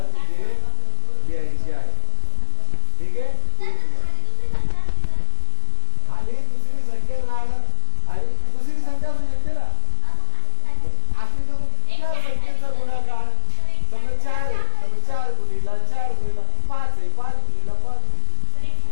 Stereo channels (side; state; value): both; different; correlation 0.00